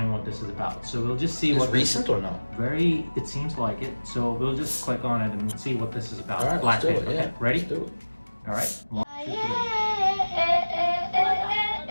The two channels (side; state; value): both; inverted; correlation -1.00